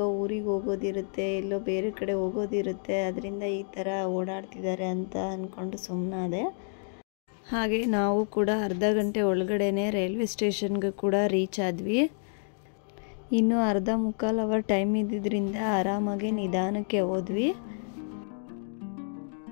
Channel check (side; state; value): right; silent; 58 dB below the other